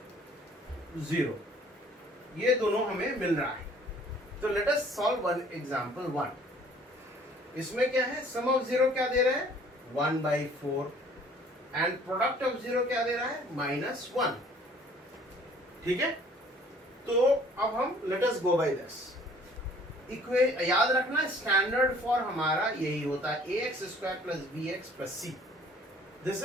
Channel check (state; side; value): normal; both; correlation 0.55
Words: zero, ये दोनों हमें मिल रहा है। तो let us solve one example 1। इसमें क्या है, सम ऑफ जीरो क्या दे रहे हैं, 1/4 एंड प्रोडक्ट ऑफ जीरो क्या दे रहा है, -1। ठीक है, तो अब हम let us go by this याद रखना, स्टैंडर्ड फॉर हमारा यही होता है, ax² + bx + c, this